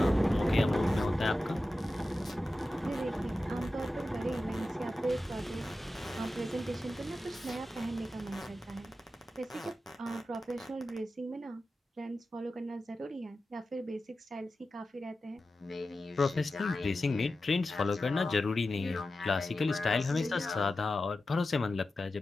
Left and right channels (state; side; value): normal; both; correlation 0.93